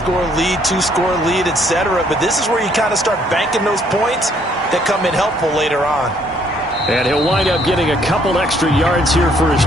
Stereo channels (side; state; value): both; normal; correlation 0.66